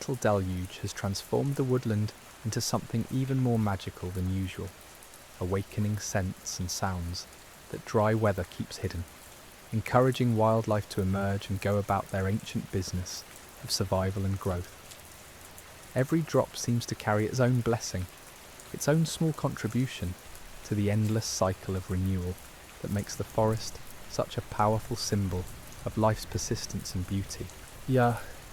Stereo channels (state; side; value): identical; both; correlation 1.00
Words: deluge has transformed the woodland into something even more magical than usual, awakening scents and sounds that dry weather keeps hidden, encouraging wildlife to emerge and go about their ancient business of survival and growth. Every drop seems to carry its own blessing, its own small contribution to the endless cycle of renewal that makes the forest such a powerful symbol of life's persistence and beauty.